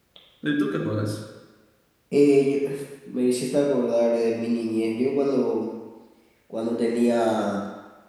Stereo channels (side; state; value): both; identical; correlation 1.00